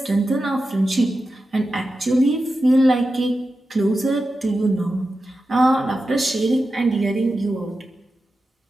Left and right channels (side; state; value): both; normal; correlation 0.91